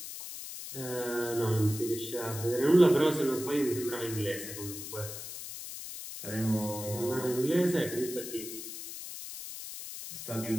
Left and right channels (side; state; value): left; noise; hiss, 9 dB below the sound